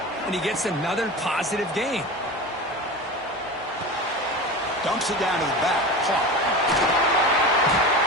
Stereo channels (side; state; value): both; normal; correlation 0.29